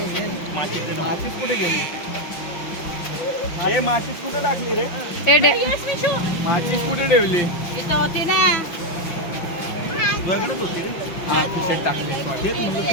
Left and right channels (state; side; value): late; right; 5.8 ms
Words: माफीच कुठे गेली? हे माशीत कुठं टाकली रे. ए डॅ माचीस कुठे ठेवली? इथं होती ना वेगळंच होती. हा खिशात टाकली. सॉरी.